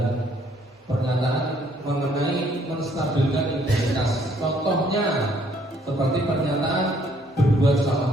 pernyataan mengenai menstabilkan identitas. Contohnya seperti pernyataan berbuat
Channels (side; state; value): both; normal; correlation 0.65